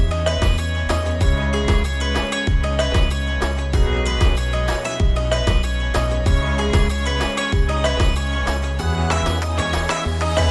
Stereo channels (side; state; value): both; identical; correlation 1.00